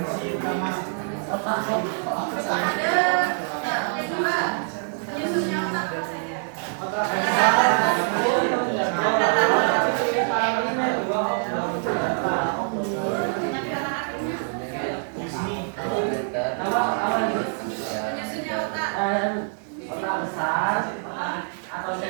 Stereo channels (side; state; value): left; silent; 61 dB below the other